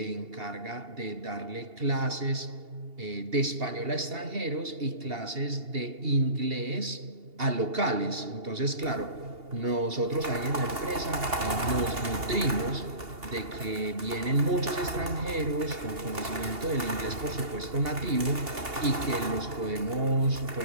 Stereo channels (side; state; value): left; late; 2.8 ms